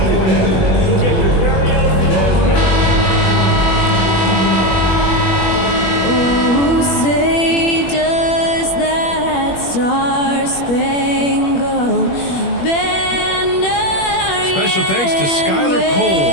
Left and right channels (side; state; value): right; late; 21 ms